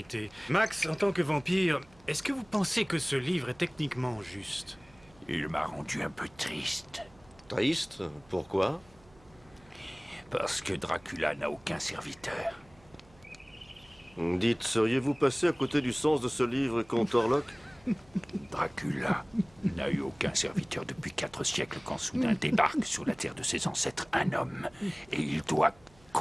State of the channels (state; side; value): noise; right; hum, 27 dB below the sound